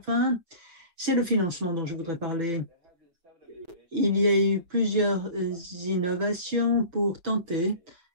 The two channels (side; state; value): left; late; 5.8 ms